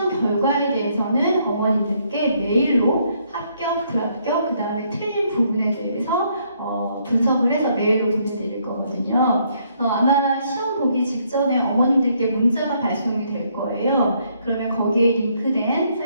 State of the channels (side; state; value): both; inverted; correlation -0.70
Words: 결과에 대해서는 어머님들께 메일로 합격, 불합격, 그 다음에 틀린 부분에 대해서 분석을 해서 메일로 보내드릴 거거든요. 아마 시험 보기 직전에 어머님들께 문자가 발송이 될 거예요. 그러면 거기에 링크된